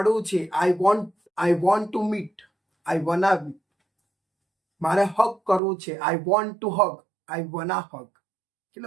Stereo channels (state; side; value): drops out; left; at 5.6 s